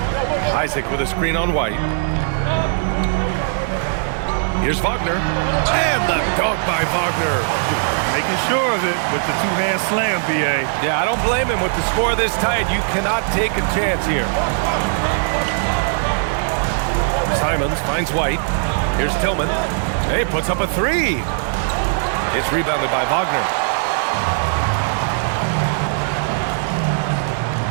Isaac with a screen on White. Here's Wagner. And the dunk by Wagner. Making sure of it with the two-hand slam, B.A. Yeah, I don't blame him with the score this tight. You cannot take a chance here. Simons finds White. Here's Tillman. Hey, puts up a 3. It's rebounded by Wagner.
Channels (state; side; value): silent; left; 58 dB below the other